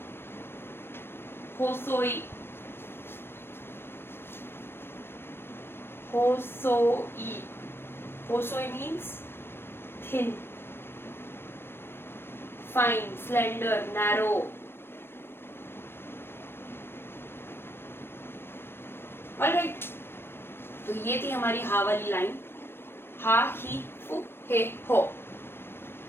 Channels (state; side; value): late; right; 0.11 ms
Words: होसोई। होसोई, होसोई means thin, fine, slender, narrow. Alright, तो ये थी हमारी हा वाली लाइन, हा, ही, फू, हे, हो।